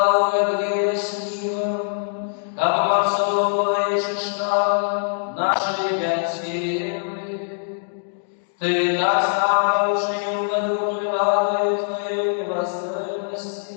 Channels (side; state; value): right; silent; digital silence